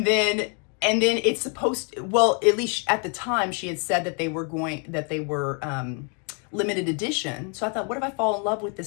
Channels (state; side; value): quieter; right; 38.3 dB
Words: then it's supposed to, well, at least at the time she had said that they were limited edition. So I thought, what if I fall in love with